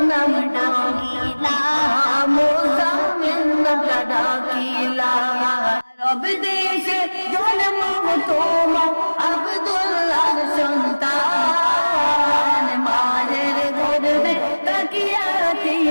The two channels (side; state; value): both; inverted; correlation -1.00